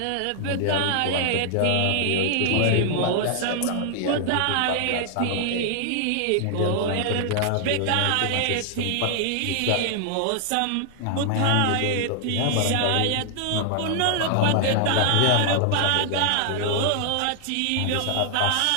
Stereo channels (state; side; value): different; both; correlation 0.00